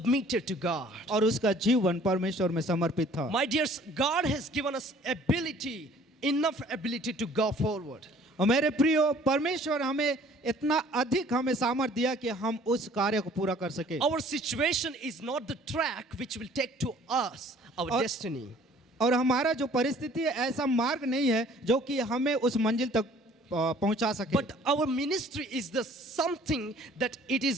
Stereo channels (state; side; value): normal; both; correlation 0.54